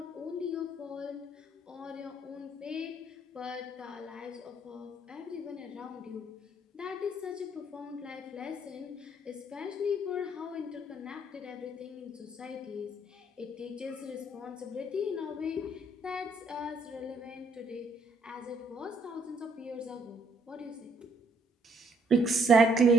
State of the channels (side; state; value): both; normal; correlation 0.67